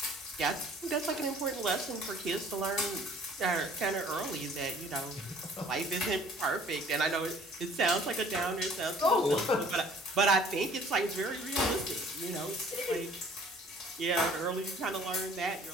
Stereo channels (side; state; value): both; normal; correlation 0.54